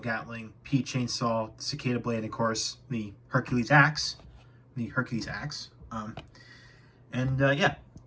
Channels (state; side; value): identical; both; correlation 1.00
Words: Pea Chainsaw, Cicada Blade, and of course, the Hercules Axe. Yeah.